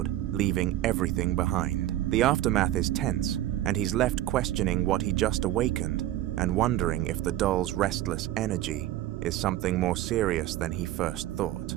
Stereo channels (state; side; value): quieter; left; 13.9 dB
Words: leaving everything behind. The aftermath is tense, and he's left questioning what he just awakened, and wondering if the doll's restless energy is something more serious than he first thought.